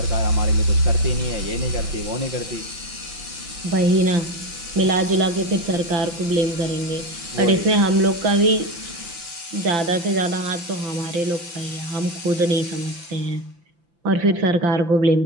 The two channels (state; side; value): late; left; 5.9 ms